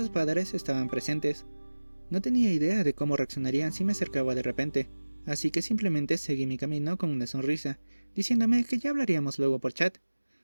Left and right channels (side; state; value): both; inverted; correlation -1.00